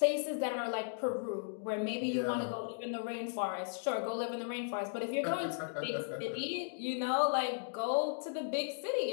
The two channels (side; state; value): right; silent; digital silence